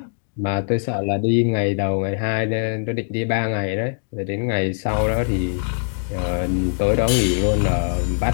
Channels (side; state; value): right; silent; digital silence